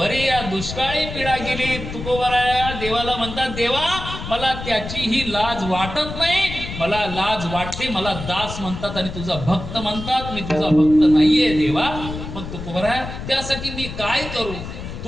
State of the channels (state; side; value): noise; left; rumble, 9 dB below the sound